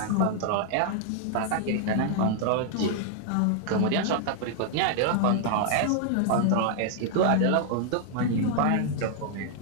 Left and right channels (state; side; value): different; both; correlation -0.01